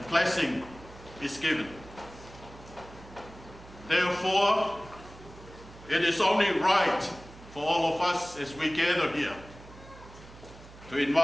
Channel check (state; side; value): noise; right; hum, 19 dB below the sound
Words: blessing is given. Therefore, it is only right for all of us as we gather here to